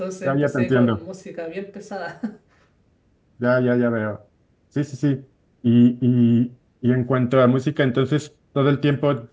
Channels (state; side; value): identical; both; correlation 1.00